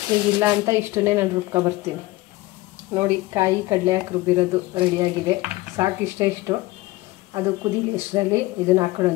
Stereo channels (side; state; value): right; quieter; 19.5 dB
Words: ಈಗಿಲ್ಲ ಅಂತ ಇಷ್ಟನ್ನೇ ನಾನು ರುಬ್ಕೊಬರ್ತೀನಿ. ನೋಡಿ, ಕಾಯಿ ಕಡಲೆ ಹಾಕಿ ರುಬ್ಬಿರೋದು ರೆಡಿಯಾಗಿದೆ. ಸಾಕು, ಇಷ್ಟು. ಅದು ಕುದೀಲಿ. ಇಷ್ಟರಲ್ಲಿ ಇದನ್ನು